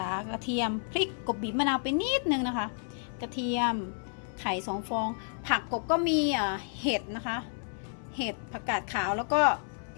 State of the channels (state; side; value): silent; right; 57 dB below the other